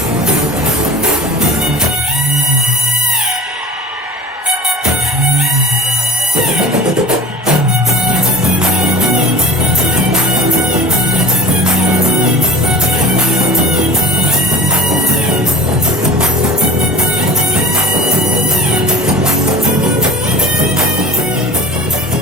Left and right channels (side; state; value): both; normal; correlation 0.38